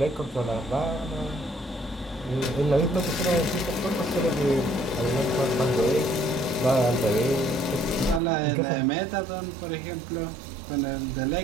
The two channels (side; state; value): left; drops out; at 8.2 s